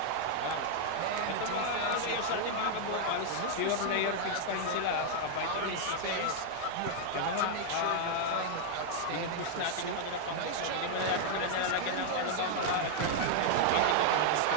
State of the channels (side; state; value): both; different; correlation 0.00